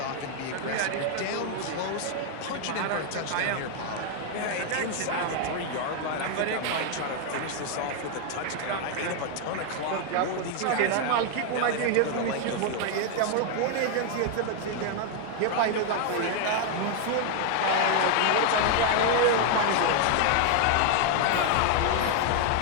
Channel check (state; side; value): different; both; correlation 0.00